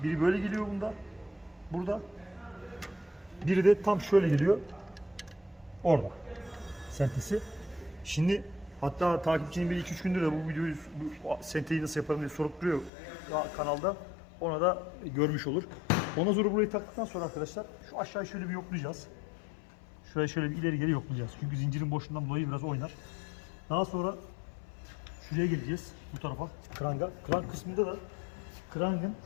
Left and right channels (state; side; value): drops out; right; at 12.9 s